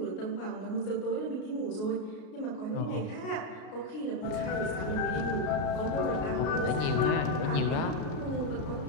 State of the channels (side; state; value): right; late; 33 ms